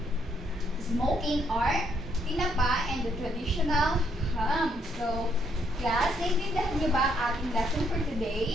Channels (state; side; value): normal; both; correlation 0.72